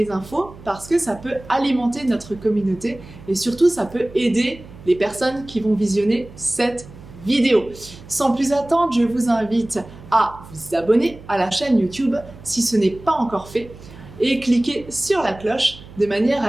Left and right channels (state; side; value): noise; right; hum, 18 dB below the sound